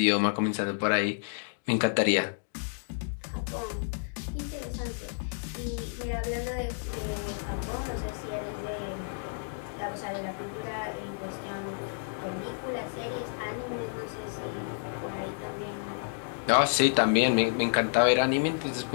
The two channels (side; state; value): right; silent; digital silence